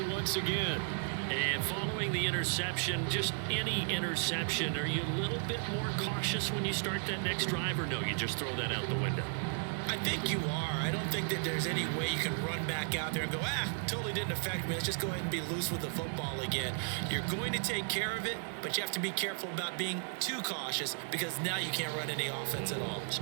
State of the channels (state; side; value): silent; left; 55 dB below the other